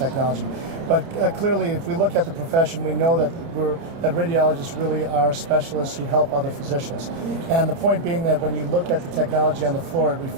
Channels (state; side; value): late; left; 30 ms